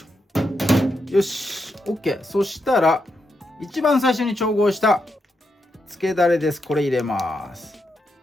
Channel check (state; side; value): normal; both; correlation 0.83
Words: ょ。よし OK。 そしたら一番最初に調合したつけだれです。これ入れます。